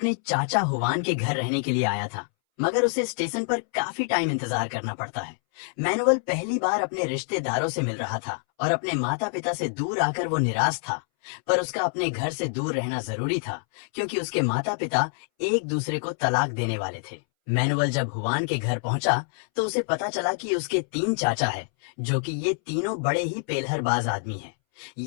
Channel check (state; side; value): silent; right; 61 dB below the other